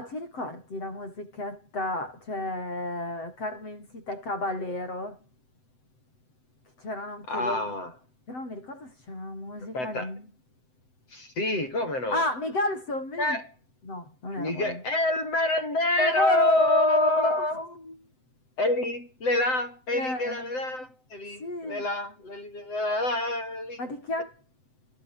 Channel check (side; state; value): right; late; 7.8 ms